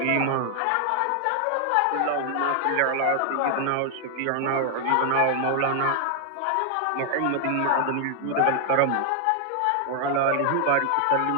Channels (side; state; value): both; different; correlation 0.00